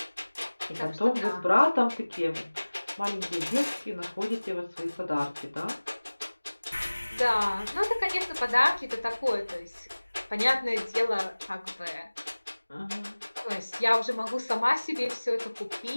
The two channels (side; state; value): both; inverted; correlation -1.00